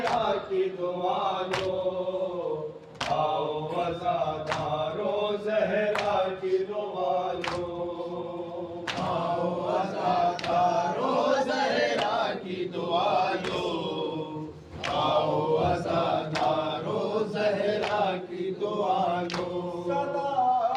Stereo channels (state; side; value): identical; both; correlation 1.00